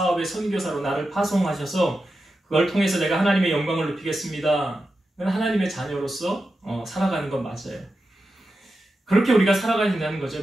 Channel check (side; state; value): both; normal; correlation 0.90